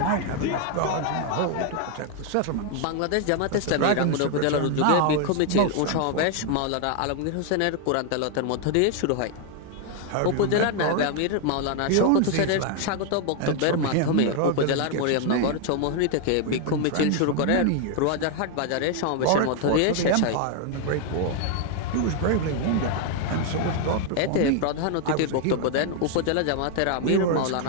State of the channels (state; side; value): different; both; correlation 0.00